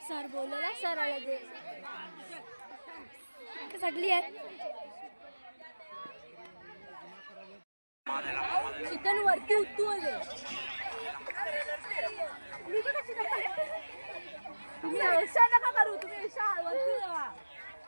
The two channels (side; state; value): both; inverted; correlation -1.00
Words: सर बोलला सर आला ते सगळी आहेत. चिकन वरती उत्तू आले तुम्ही अशा नका करू तुम्ही अशा वरती जावा